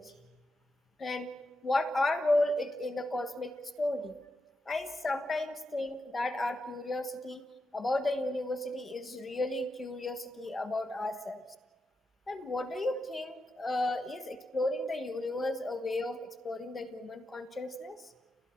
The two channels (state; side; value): normal; both; correlation 0.86